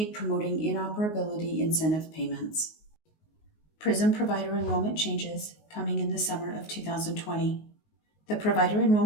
promoting inoperability incentive payments. PRISM provider enrollment changes coming in the summer of 2020. The provider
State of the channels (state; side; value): late; right; 19 ms